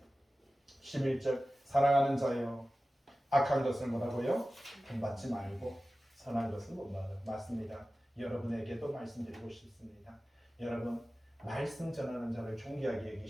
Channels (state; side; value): normal; both; correlation 0.95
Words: 11절 사랑하는 자여 악한 것을 뭐라고요? 본받지 말고 선한 것을 본받아. 맞습니다. 여러분에게도 말씀드리고 싶습니다. 여러분 말씀 전하는 자를 존귀하게